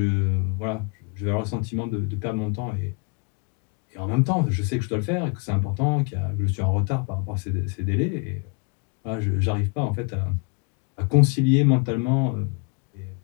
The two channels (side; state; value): right; quieter; 32.6 dB